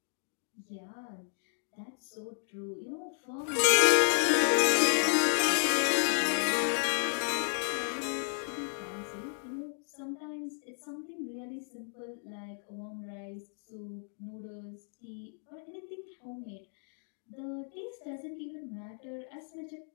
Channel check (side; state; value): right; silent; digital silence